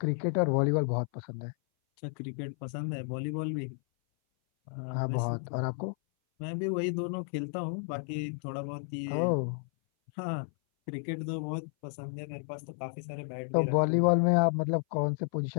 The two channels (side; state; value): right; silent; 56 dB below the other